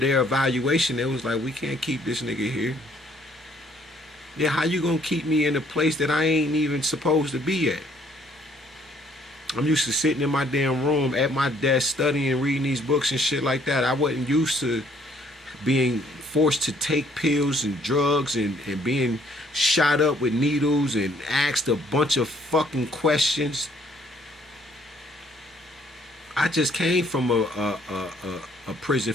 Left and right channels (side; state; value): both; normal; correlation 0.63